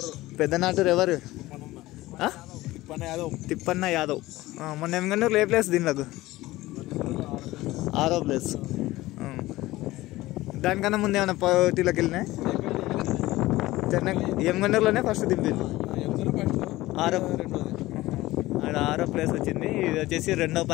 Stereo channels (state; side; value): quieter; right; 17.9 dB